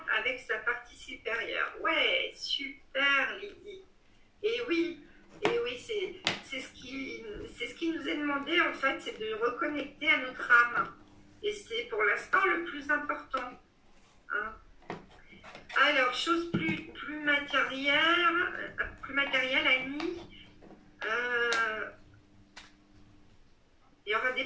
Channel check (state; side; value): identical; both; correlation 1.00